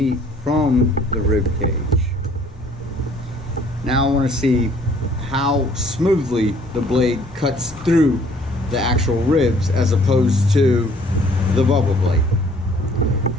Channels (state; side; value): normal; both; correlation 0.58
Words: from the rib cage. Now I want to see how smoothly the blade cuts through the actual ribs as opposed to the Bubba Blade.